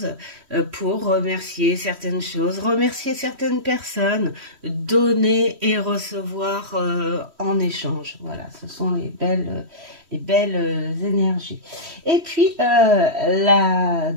pour remercier certaines choses, remercier certaines personnes, donner et recevoir en échange. Voilà, ce sont les belles énergies. Et puis, la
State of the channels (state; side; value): late; left; 3.1 ms